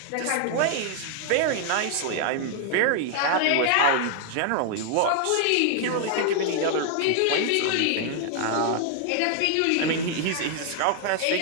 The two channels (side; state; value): both; different; correlation 0.00